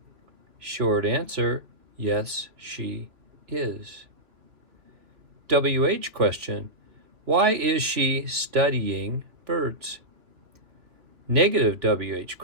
Short answer. Yes, she is. WH question. Why is she studying birds? Negative WH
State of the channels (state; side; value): late; left; 3.0 ms